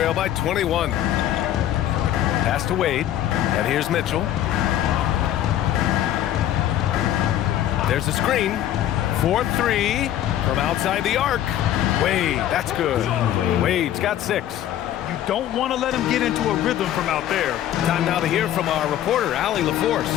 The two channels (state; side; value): quieter; right; 12.0 dB